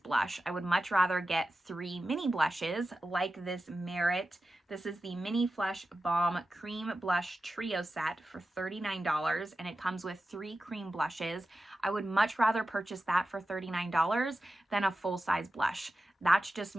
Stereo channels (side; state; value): both; normal; correlation 0.93